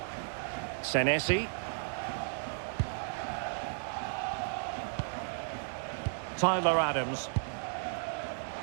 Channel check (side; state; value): left; silent; digital silence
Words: Senesi. Tyler Adams.